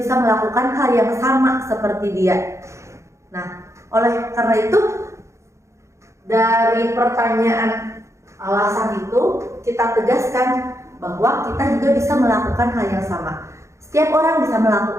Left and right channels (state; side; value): late; left; 0.14 ms